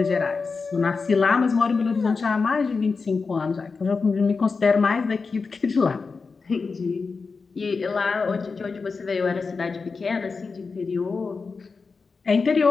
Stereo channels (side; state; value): right; quieter; 4.6 dB